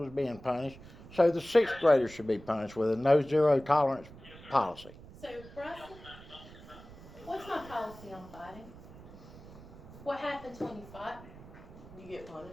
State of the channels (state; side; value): noise; right; rumble, 18 dB below the sound